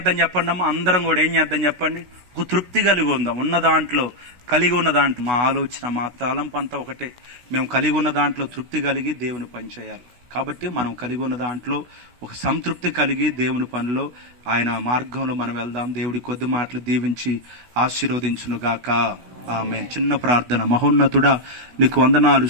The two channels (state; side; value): late; left; 16 ms